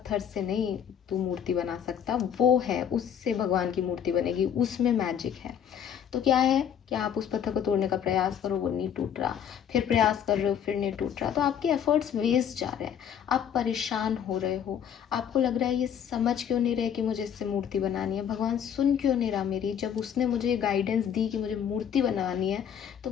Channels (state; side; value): quieter; right; 8.7 dB